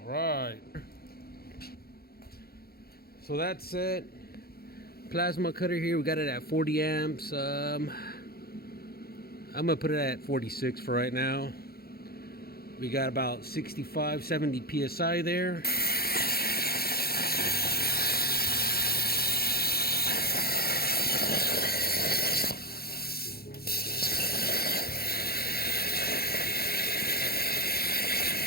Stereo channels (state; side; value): late; right; 0.45 ms